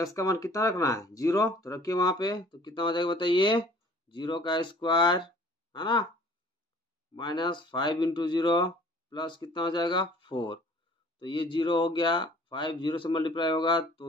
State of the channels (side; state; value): both; normal; correlation 0.52